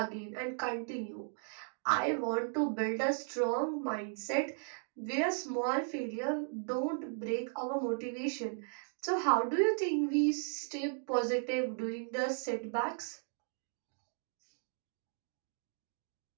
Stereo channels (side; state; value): left; silent; digital silence